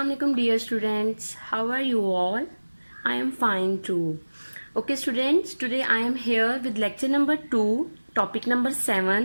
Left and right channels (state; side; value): inverted; both; correlation -1.00